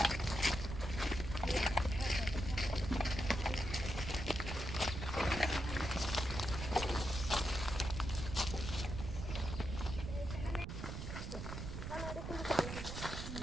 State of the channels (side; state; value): right; noise; rumble, 6 dB below the sound